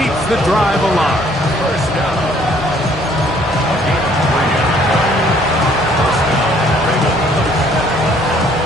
keeps the drive alive. First down.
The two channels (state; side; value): normal; both; correlation 0.61